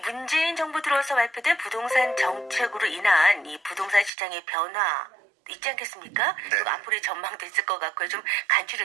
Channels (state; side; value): drops out; left; at 4.1 s